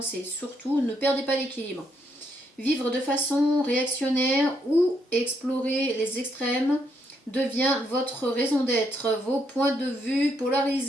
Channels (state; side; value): normal; both; correlation 0.76